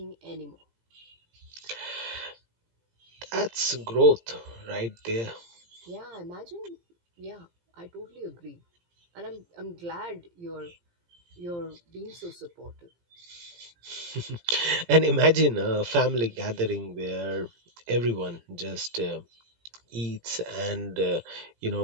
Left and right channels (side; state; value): left; late; 17 ms